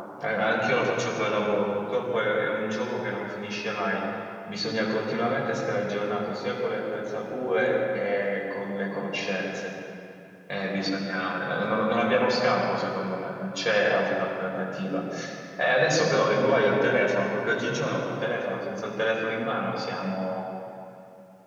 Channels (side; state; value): both; identical; correlation 1.00